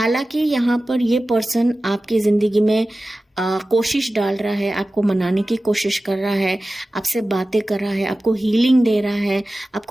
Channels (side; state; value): both; normal; correlation 0.95